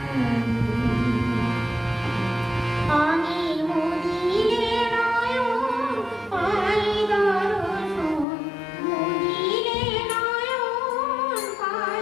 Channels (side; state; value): right; drops out; at 8.2 s